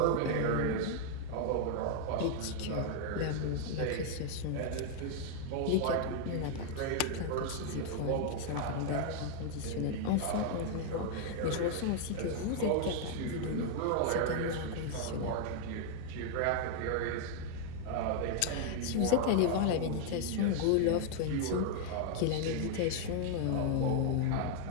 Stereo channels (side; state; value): both; different; correlation 0.00